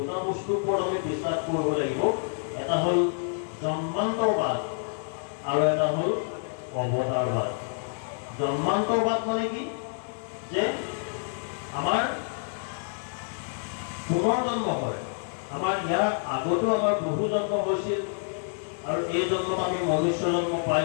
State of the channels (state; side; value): silent; right; digital silence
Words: বস্তুৰ ওপৰত আমি বিশ্বাস কৰিব লাগিব। এটা হ'ল জন্মান্তৰবাদ আৰু এটা হ'ল অৱতাৰবাদ। জন্মান্তৰবাদ মানে কি, যে আমাৰ পুনৰ জন্ম হয়, আমাৰ ইয়াৰ আগতো আমাৰ বহু জন্ম হৈছিল আৰু এই জন্মত আমি মনুষ্য জন্ম